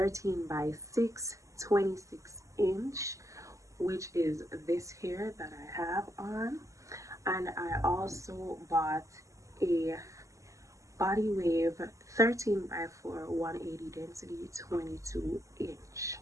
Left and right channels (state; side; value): late; left; 0.16 ms